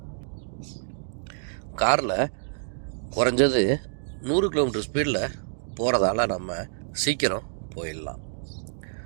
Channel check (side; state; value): left; silent; digital silence